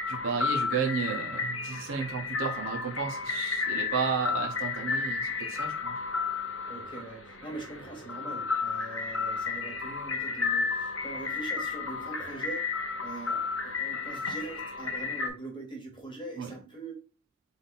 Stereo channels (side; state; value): both; normal; correlation 0.19